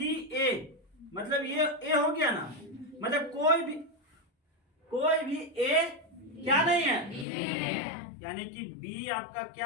ए, मतलब ये ए हो गया ना, मतलब कोई भी ए क्या नहीं है, यानी कि बी आपका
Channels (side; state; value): right; drops out; at 7.2 s